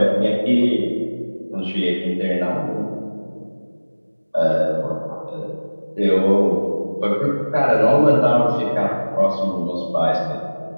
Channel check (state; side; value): inverted; both; correlation -1.00